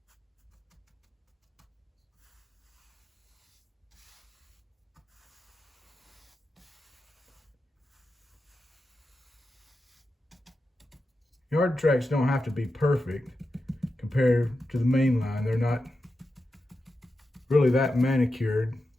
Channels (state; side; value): normal; both; correlation 0.90